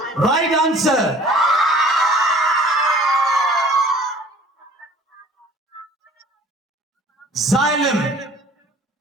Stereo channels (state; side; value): normal; both; correlation 0.50